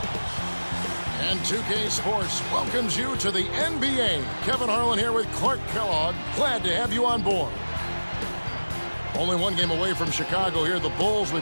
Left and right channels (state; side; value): inverted; both; correlation -1.00